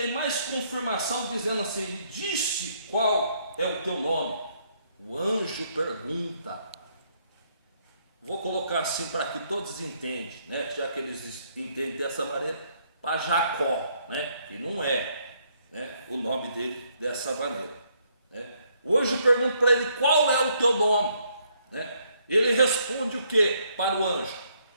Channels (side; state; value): both; inverted; correlation -0.71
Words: mais confirmação, dizendo assim: disse qual é o teu nome? O anjo pergunta. Vou colocar assim para que todos entendam, né? Já que eles entendem dessa maneira, para Jacó, né? Que não é, né, o nome dele dessa maneira, né? O anjo pergunta para ele: qual é o teu nome? Né? Ele responde o que para o anjo?